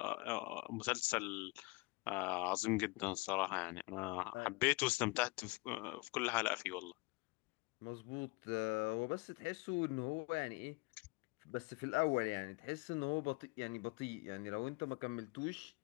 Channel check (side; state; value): right; quieter; 25.8 dB